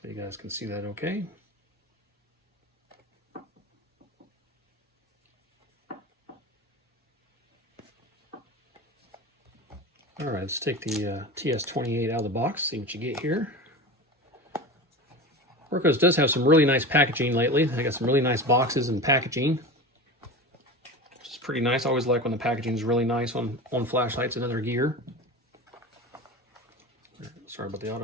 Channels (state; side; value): normal; both; correlation 0.29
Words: you guys can see that okay. All right, let's take the TS28 out of the box, see what you get here. Wurkkos does have some really nice packaging lately. They got some really nice boxes and packaging, which is pretty nice. I always like when the packaging is really nice on flashlights and other gear. Sorry about the